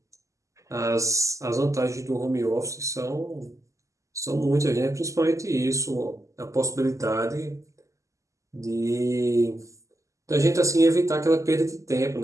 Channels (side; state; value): left; late; 0.16 ms